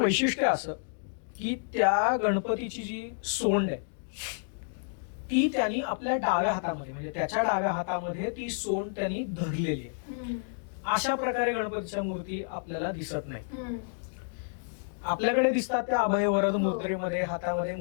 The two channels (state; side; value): silent; right; digital silence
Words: वैशिष्ट्य असं की त्या गणपतीची जी सोंड आहे ती त्यांनी आपल्या डाव्या हातामध्ये, म्हणजे त्याच्या डाव्या हातामध्ये ती सोंड त्यांनी धरलेली आहे. अशा प्रकारे गणपतीच्या मूर्ती आपल्याला दिसत नाही. आपल्याकडे दिसतात त्या अभय वरद मुद्रेमध्ये हातामध्ये